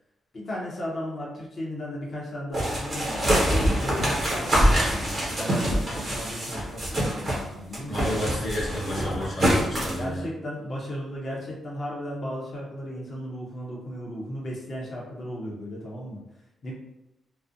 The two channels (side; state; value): both; normal; correlation 0.85